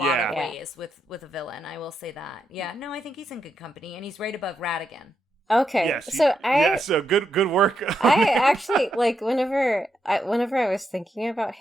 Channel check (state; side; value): normal; both; correlation 0.82